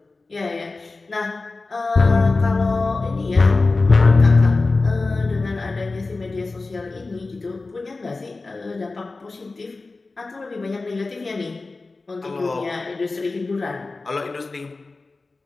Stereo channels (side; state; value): right; quieter; 3.6 dB